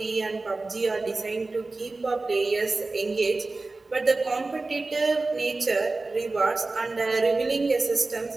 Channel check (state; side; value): quieter; left; 3.4 dB